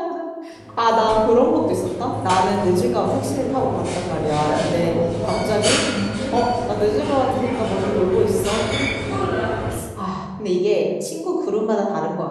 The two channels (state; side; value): identical; both; correlation 1.00